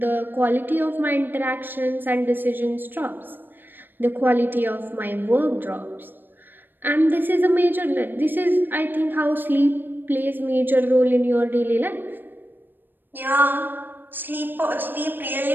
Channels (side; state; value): left; late; 0.094 ms